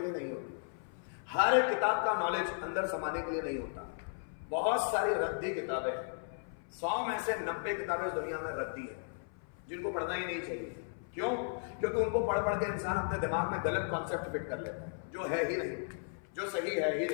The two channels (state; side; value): silent; right; 54 dB below the other